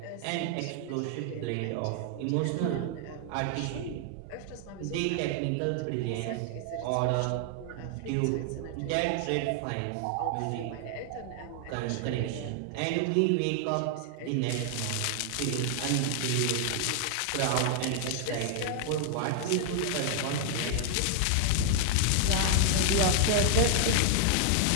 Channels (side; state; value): both; different; correlation 0.00